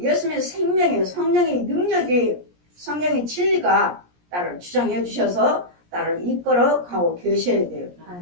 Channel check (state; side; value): late; left; 17 ms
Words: 생명의 성령의 능력이 성령의 진리가 나를 주장해 주셔서 나를 이끌어 가고 계셔야 돼요.